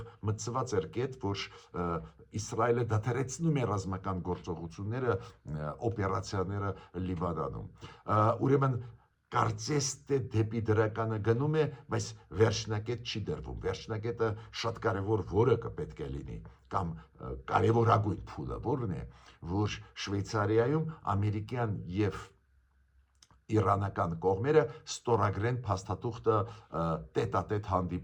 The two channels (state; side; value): identical; both; correlation 1.00